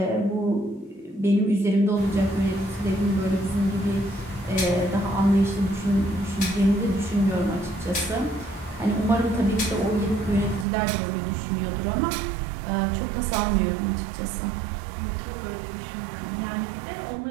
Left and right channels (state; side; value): drops out; left; at 10.7 s